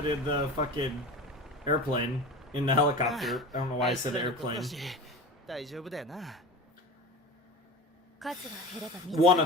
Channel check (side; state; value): both; normal; correlation 0.32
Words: in the fucking airplane. In the helicopter. I don't know why I said airplane. One